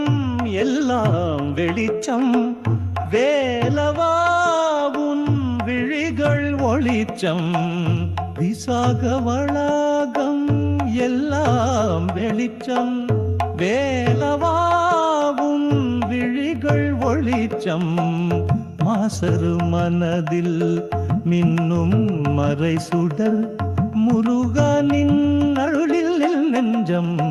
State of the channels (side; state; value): both; identical; correlation 1.00